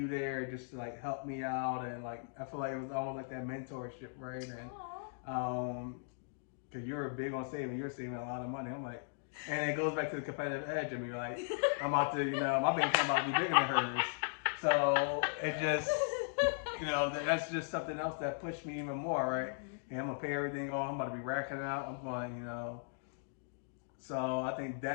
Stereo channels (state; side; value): silent; right; digital silence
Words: there just to like help me out and like I feel like it was almost like that mentorship, right? And Aw. because you were big on saving, you're saving a lot of money. I'm like, and it goes back to the competitive edge. I mean, you're like, I'm about to, my bank account about to be bigger than hers. So it just, that's just something else that pushed me even more, right? Mhm. And I'm gonna pay everything off. I'm about to be racking it out. I'm going, So I think